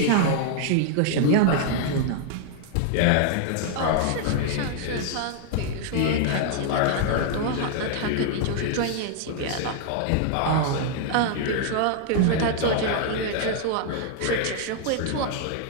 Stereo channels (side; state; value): both; different; correlation -0.01